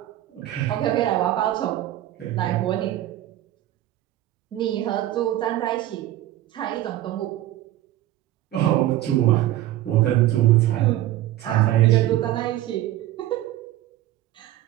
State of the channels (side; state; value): left; quieter; 14.3 dB